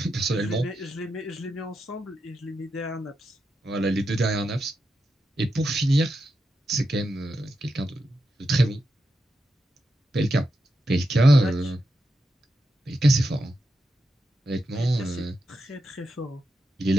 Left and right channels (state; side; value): normal; both; correlation 0.87